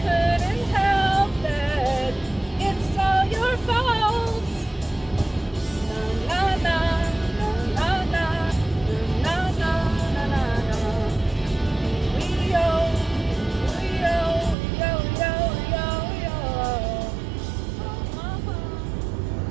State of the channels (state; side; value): drops out; left; at 14.6 s